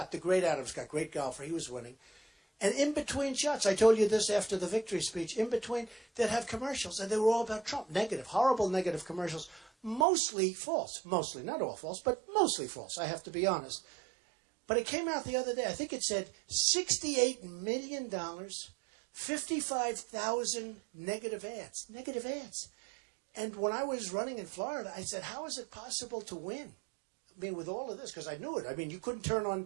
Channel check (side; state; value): left; drops out; at 10.1 s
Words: the great Adam Scott, great golfer, he was winning. And in between shots, I told you this after the victory speech, in between, they'd have commercials, and they were all about Trump. Negative, horrible negative commercials. Mostly false. Mostly, not all false, but mostly false, I have to be honest. But it came out the other day. I think it said $68 million, 55,000 negative ads. Negative ads. And when I was running in Florida, I said, how is it possible to win? I mean, with all of this, because I knew it. I mean, you couldn't turn